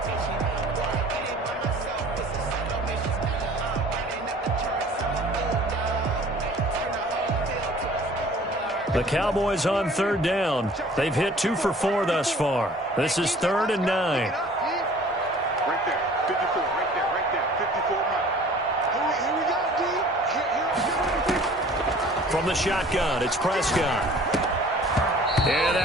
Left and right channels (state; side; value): normal; both; correlation 0.49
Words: The Cowboys on 3rd down. They've hit 2 for 4 thus far. This is 3rd and 9. Right there, 54, right there, 54. Here we go, D. From the shotgun, it's Prescott. And